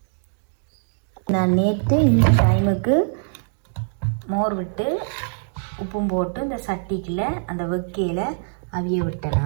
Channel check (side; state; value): left; silent; digital silence